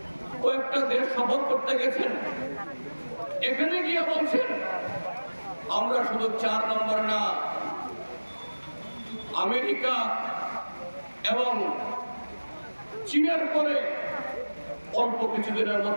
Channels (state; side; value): inverted; both; correlation -1.00